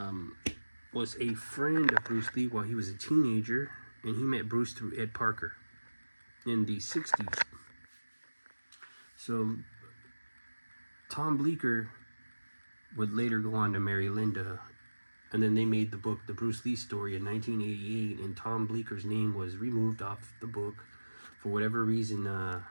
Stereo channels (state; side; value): inverted; both; correlation -1.00